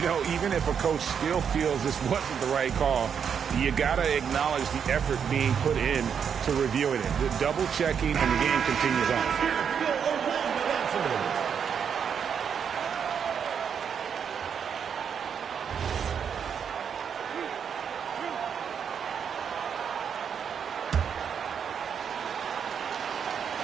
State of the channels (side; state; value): left; quieter; 7.4 dB